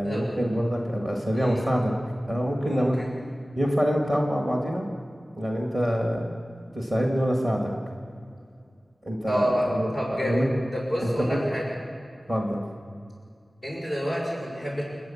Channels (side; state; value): both; normal; correlation 0.97